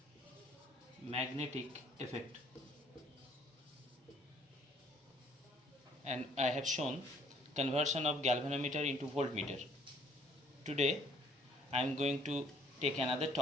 And I have shown conversion of galvanometer into voltmeter. Today I am going to take another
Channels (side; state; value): both; normal; correlation 0.61